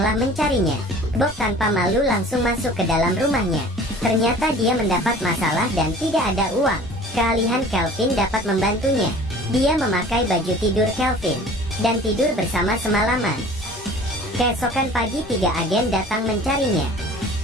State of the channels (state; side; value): normal; both; correlation 0.46